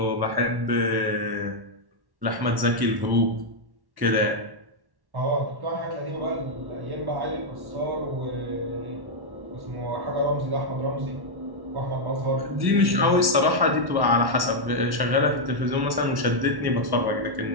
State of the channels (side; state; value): left; late; 1.1 ms